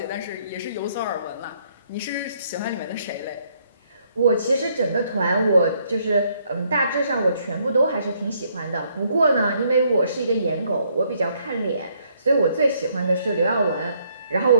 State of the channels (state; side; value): inverted; both; correlation -0.69